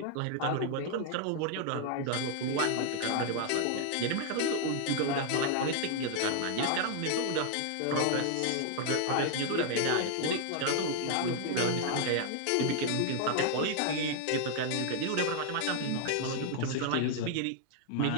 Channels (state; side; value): different; both; correlation 0.00